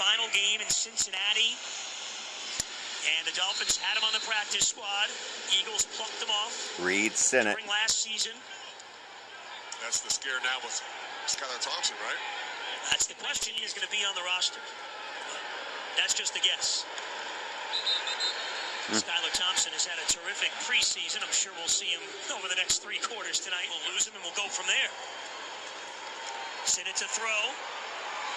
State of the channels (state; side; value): identical; both; correlation 1.00